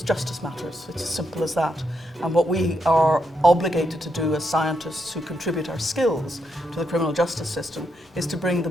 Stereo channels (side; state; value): both; normal; correlation 0.80